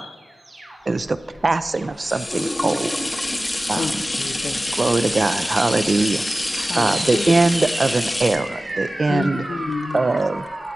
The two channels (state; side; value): normal; both; correlation 0.96